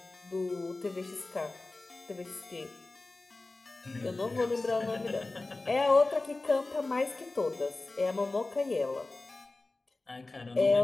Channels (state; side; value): quieter; right; 3.2 dB